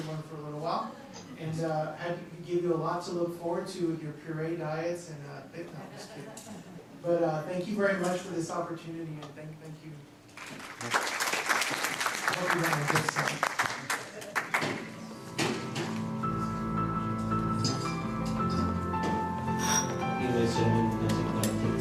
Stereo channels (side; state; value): both; identical; correlation 1.00